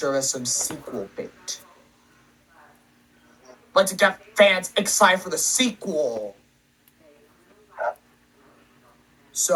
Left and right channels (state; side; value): identical; both; correlation 1.00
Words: as some sequel bait. But to get fans excited for the sequel.